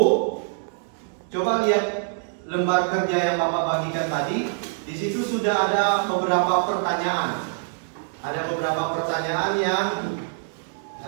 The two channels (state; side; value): silent; left; 62 dB below the other